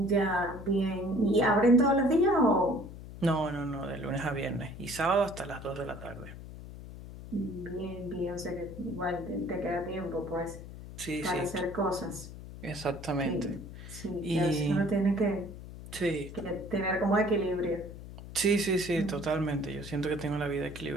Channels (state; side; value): noise; left; hum, 13 dB below the sound